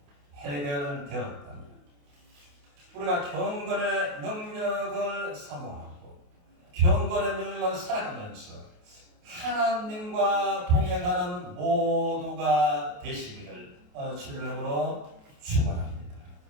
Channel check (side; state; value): left; late; 28 ms